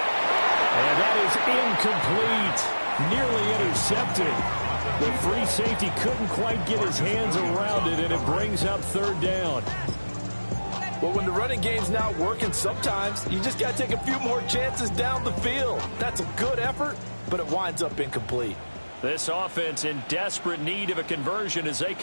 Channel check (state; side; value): inverted; both; correlation -1.00